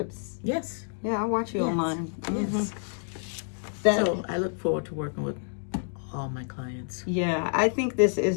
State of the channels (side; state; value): right; silent; 59 dB below the other